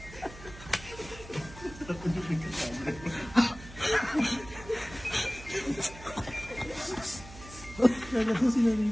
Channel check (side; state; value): right; noise; hum, 17 dB below the sound